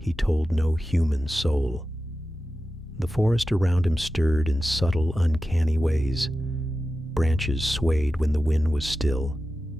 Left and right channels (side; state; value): both; normal; correlation 0.93